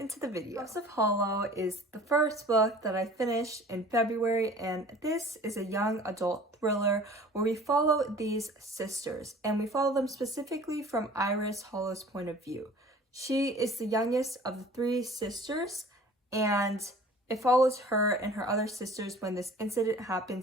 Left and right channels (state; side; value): normal; both; correlation 0.46